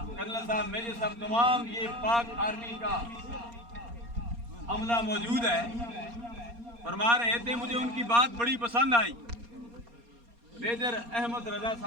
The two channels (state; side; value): late; left; 4.3 ms